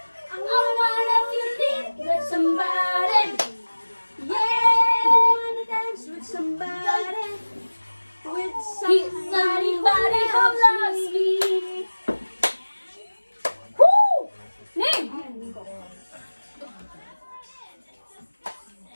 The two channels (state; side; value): inverted; both; correlation -1.00